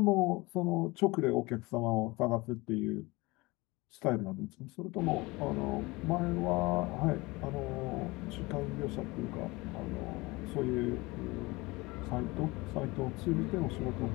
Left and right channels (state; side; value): quieter; right; 23.0 dB